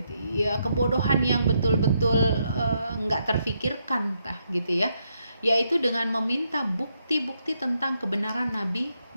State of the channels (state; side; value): inverted; both; correlation -0.79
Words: ya, kebodohan yang betul-betul nggak terfikirkan gitu ya, yaitu dengan meminta bukti-bukti tentang kebenaran Nabi